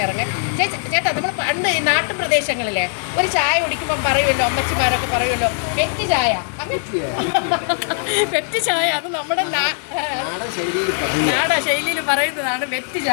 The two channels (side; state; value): right; silent; digital silence